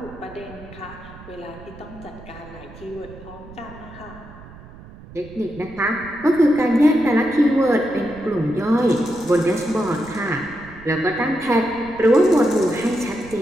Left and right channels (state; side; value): noise; right; rumble, 18 dB below the sound